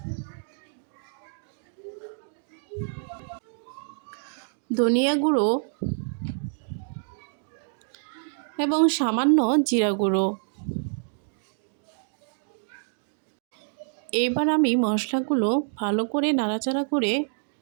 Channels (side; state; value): left; silent; digital silence